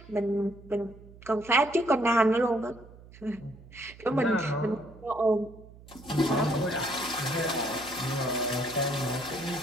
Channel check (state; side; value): noise; right; hum, 20 dB below the sound